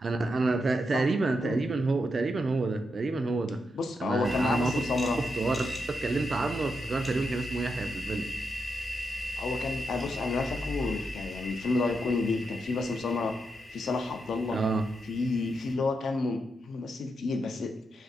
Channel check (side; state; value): both; normal; correlation 0.84